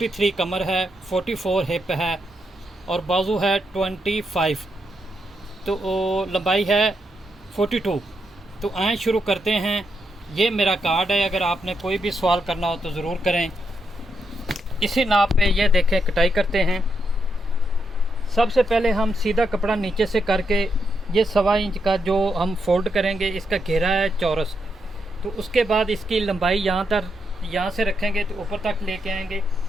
कमर है, 44 हिप है और बाजू है 25, तो लंबाई है 42। तो आए शुरू करते हैं। ये मेरा कार्ड है, अगर आपने कोई भी सवाल करना हो तो ज़रूर करें। इसी नाप पे ये देखें कटाई करते हैं। सबसे पहले हम सीधा कपड़ा नीचे से करके ये 1.25 इंच का जो हम फोल्ड करेंगे, इसका घेरा है चौरस। तो उसके बाद इसकी लंबाई यहाँ से रखेंगे तो ऊपर तक लेके आएंगे।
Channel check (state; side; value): normal; both; correlation 0.81